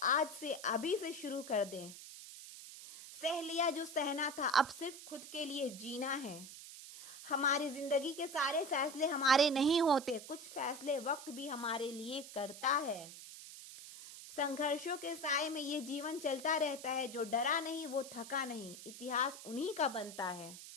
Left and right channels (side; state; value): right; noise; hiss, 13 dB below the sound